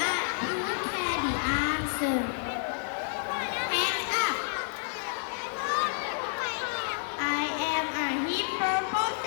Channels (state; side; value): silent; right; digital silence